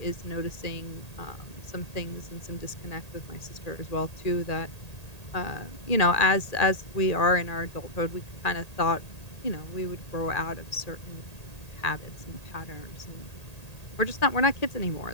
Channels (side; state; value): right; late; 1.8 ms